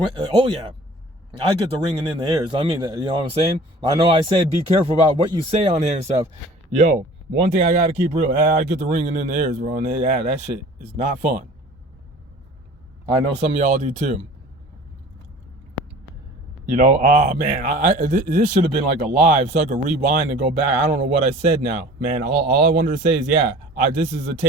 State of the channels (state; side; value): normal; both; correlation 0.45